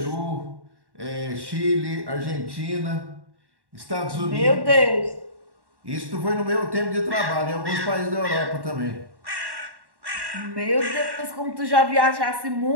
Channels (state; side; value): late; left; 1.1 ms